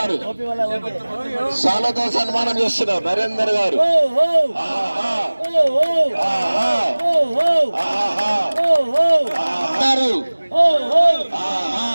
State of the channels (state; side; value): inverted; both; correlation -1.00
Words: శాలతో సన్మానం చేస్తున్నారు. నరేందర్ గారు